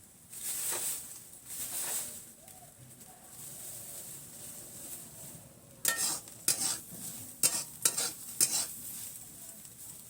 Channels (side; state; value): both; identical; correlation 1.00